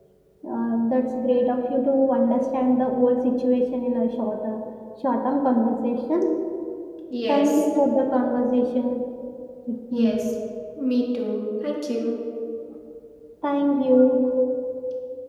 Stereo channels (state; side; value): identical; both; correlation 1.00